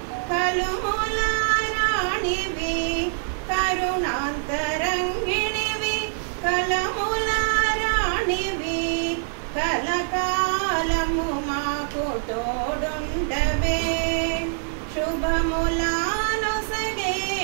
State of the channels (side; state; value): left; silent; 55 dB below the other